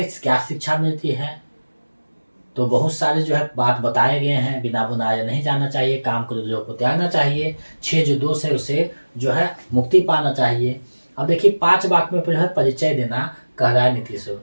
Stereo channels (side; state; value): both; inverted; correlation -1.00